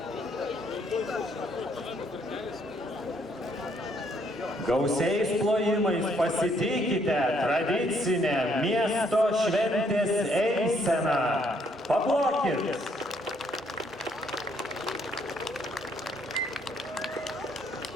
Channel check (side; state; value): both; normal; correlation 0.69